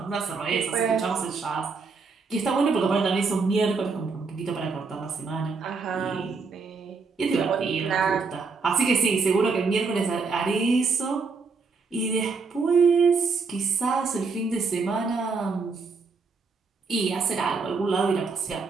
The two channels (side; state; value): left; quieter; 4.6 dB